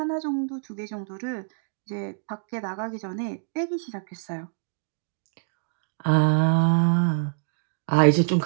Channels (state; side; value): silent; left; digital silence